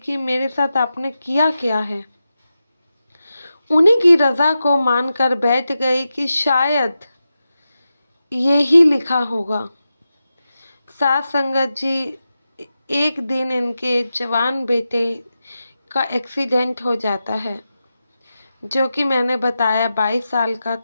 मेरे साथ आपने किया क्या है। उन्हीं की रज़ा को मानकर बैठ गई कि शायद यही लिखा होगा। साथ संगत जी, एक दिन इनके जवान बेटे का एक्सीडेंट हो जाता है, जो कि मैंने बताया 22 साल का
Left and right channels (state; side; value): inverted; both; correlation -0.91